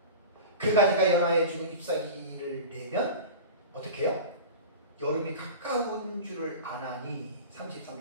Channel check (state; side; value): inverted; both; correlation -0.32